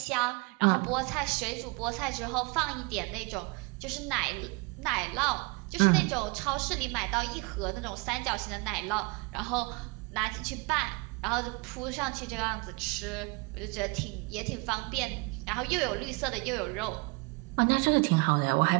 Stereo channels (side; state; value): left; quieter; 28.6 dB